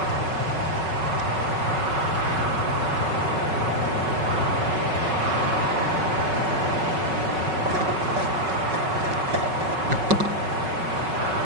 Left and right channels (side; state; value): left; late; 5.4 ms